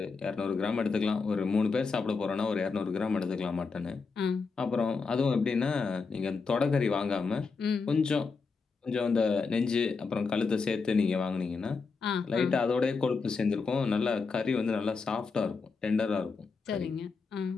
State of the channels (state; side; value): quieter; right; 4.7 dB